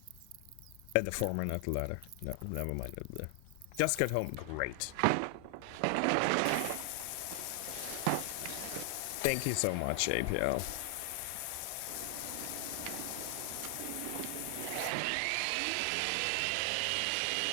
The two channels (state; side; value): different; both; correlation 0.00